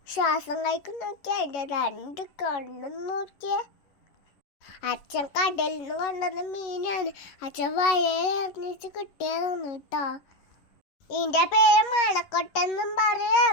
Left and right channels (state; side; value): late; right; 10 ms